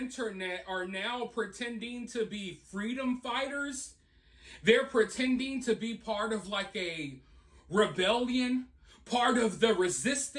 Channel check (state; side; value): identical; both; correlation 1.00